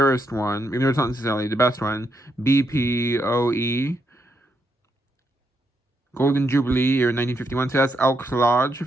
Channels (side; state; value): both; normal; correlation 0.80